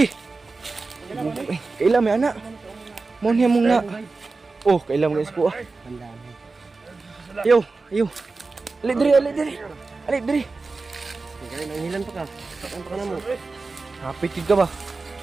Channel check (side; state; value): left; quieter; 3.9 dB